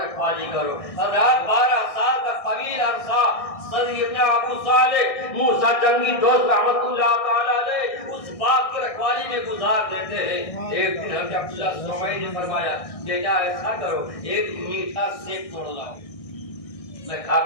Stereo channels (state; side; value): late; right; 1.6 ms